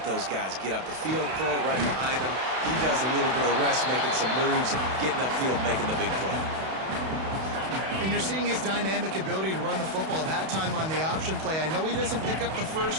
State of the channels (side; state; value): left; late; 32 ms